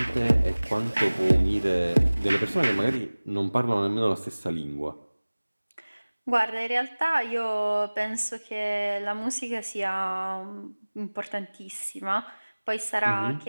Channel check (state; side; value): inverted; both; correlation -1.00